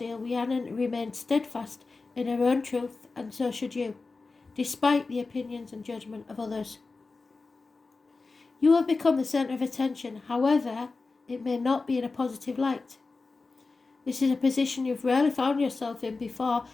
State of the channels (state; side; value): quieter; right; 3.9 dB